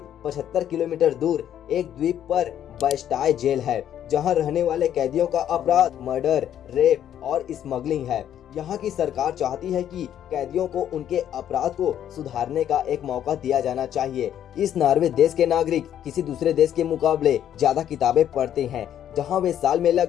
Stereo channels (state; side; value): quieter; right; 10.4 dB